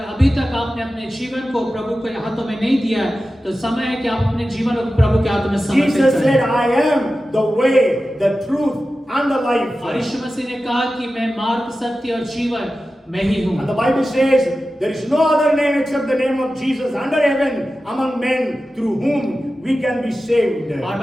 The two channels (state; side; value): normal; both; correlation 0.94